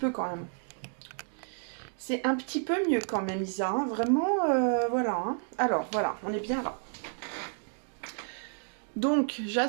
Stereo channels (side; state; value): left; silent; 57 dB below the other